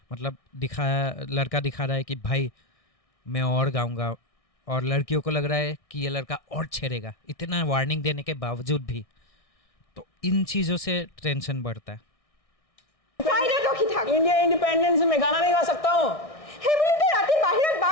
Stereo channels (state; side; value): late; right; 1.6 ms